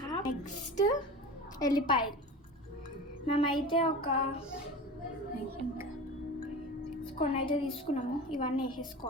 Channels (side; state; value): both; normal; correlation 0.32